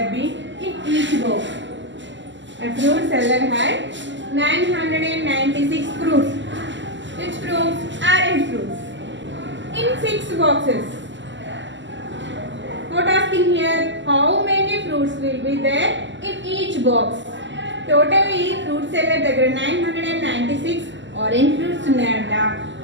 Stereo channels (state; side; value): late; left; 0.54 ms